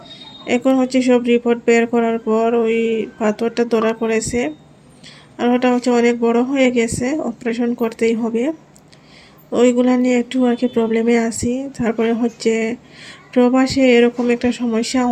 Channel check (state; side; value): identical; both; correlation 1.00